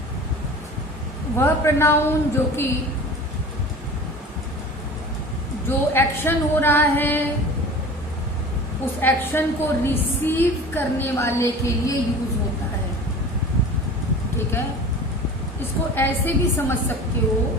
वह pronoun जो एक्शन हो रहा है उस एक्शन को रिसीव करने वाले के लिए यूज होता है, ठीक है। इसको ऐसे भी समझ सकते हो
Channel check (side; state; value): both; normal; correlation 0.38